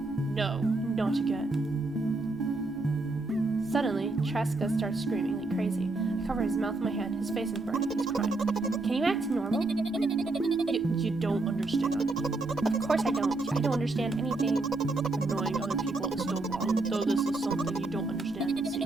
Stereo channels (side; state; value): left; quieter; 3.1 dB